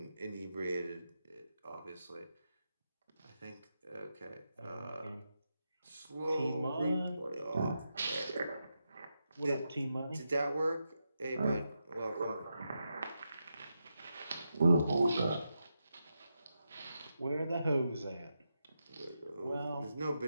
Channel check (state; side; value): inverted; both; correlation -0.87